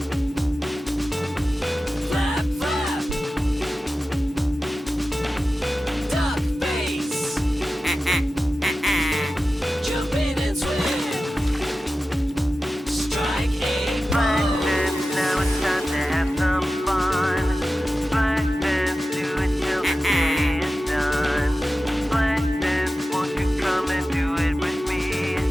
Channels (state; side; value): normal; both; correlation 0.94